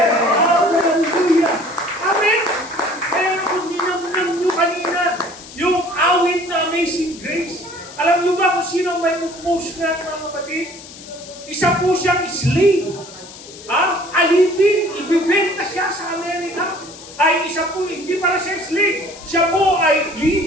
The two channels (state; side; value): noise; left; hiss, 17 dB below the sound